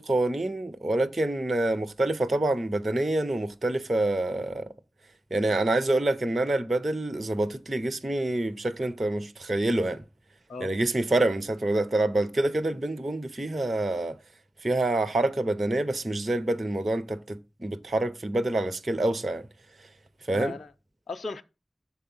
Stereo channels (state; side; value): normal; both; correlation 0.90